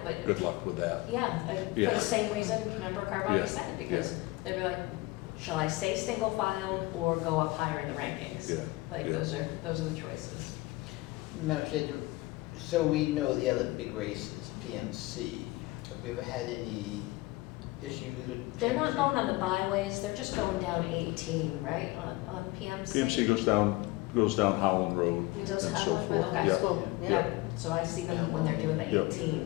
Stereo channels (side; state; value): right; quieter; 20.8 dB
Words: but. Good luck with that. Yeah, for Yeah. the same reason Member Carboni Yeah. said, because Yeah. they'd be like, shall I stay single filed or go up higher in the rankings? Yeah. Like, Yeah. those are the choices. Madam Chair, so we know the other big race is PMC. Have we ever had any issues with PMC? They're not going on the byways, they're just going down 18, right, on PMC? PMC goes down Howland Road It does and have so one for forth. the high Yeah. school, yeah. So I see them when they're doing the Yep.